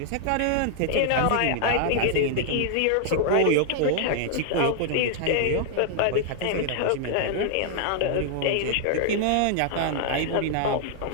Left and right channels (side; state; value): both; different; correlation 0.00